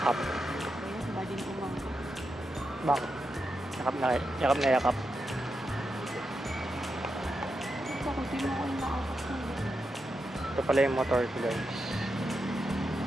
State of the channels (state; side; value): normal; both; correlation 0.86